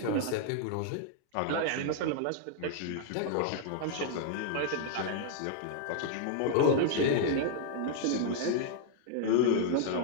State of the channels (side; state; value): both; different; correlation -0.01